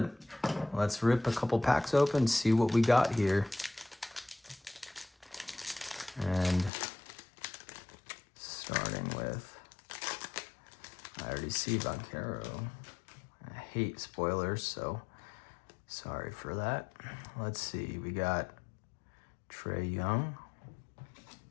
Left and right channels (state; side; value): drops out; right; at 6.7 s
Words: Let's rip a couple packs open, see what we got here. And starting with, I already see Banchero. I hate spoilers, so sorry for that. Let's see, we got Trae Young.